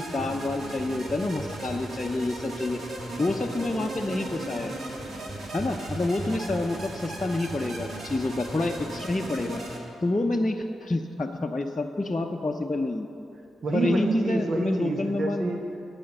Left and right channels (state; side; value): normal; both; correlation 0.89